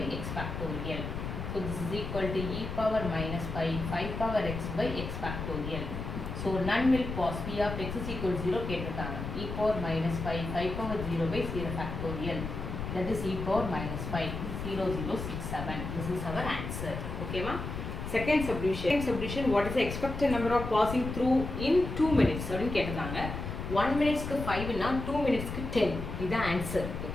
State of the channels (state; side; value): noise; left; rumble, 6 dB below the sound